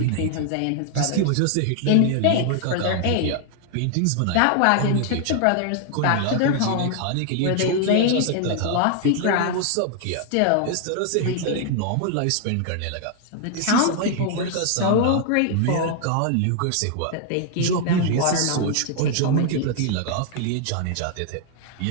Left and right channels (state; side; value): different; both; correlation 0.00